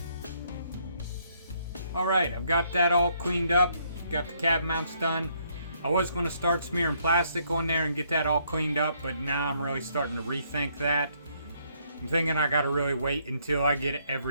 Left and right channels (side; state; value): both; inverted; correlation -0.70